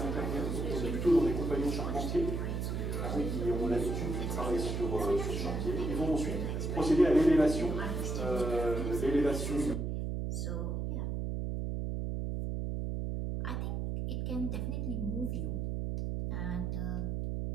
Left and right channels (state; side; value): noise; right; hum, 1 dB below the sound